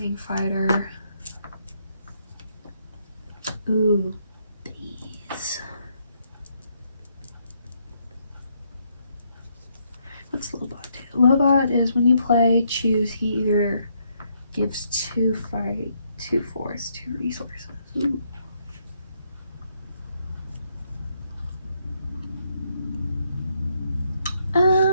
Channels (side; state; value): both; inverted; correlation -0.74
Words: Fighter. Ooh, these. What's Lobot do? Lobot is when you play, choose. He either gives 2 fight, 2 force, 2 resources. Ooh.